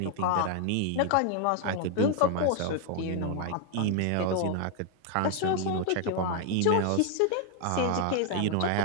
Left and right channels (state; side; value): different; both; correlation 0.00